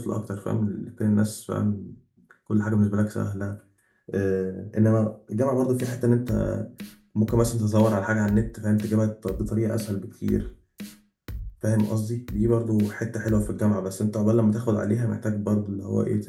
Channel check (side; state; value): both; identical; correlation 1.00